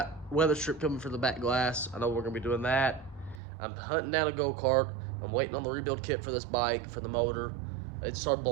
weather strip coming for the back glass. I know we're going to be doing that. I'm hunting down a go-kart. I'm waiting on the rebuild kit for this bike, for the motor. It started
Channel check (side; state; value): left; drops out; at 3.4 s